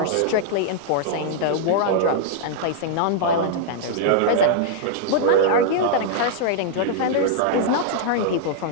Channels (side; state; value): both; different; correlation -0.01